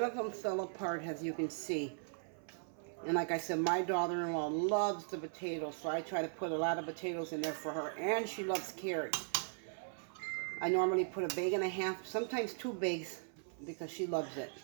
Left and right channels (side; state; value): left; silent; 52 dB below the other